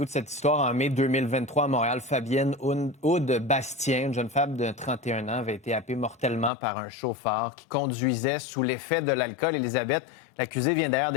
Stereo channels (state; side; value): drops out; right; at 6.5 s